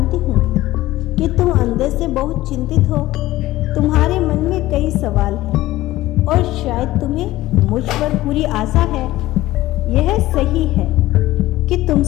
हूँ कि तुम अंदर से बहुत चिंतित हो। तुम्हारे मन में कई सवाल हैं और शायद तुम्हें मुझ पर पूरी आशा है। यह सही है कि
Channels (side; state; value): right; quieter; 16.6 dB